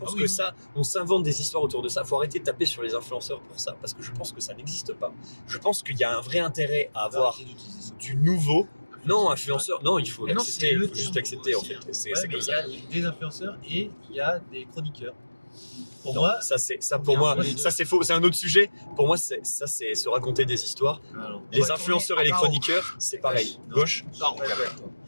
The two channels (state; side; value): inverted; both; correlation -1.00